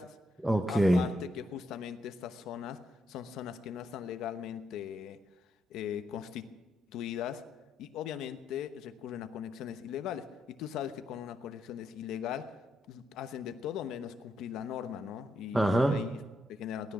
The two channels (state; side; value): normal; both; correlation 0.80